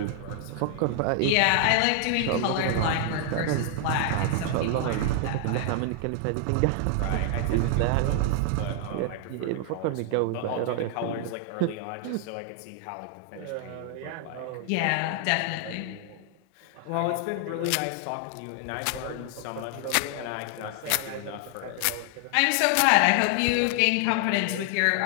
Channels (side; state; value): both; different; correlation 0.00